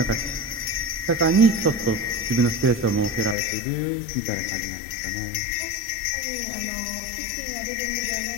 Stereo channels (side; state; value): right; drops out; at 3.4 s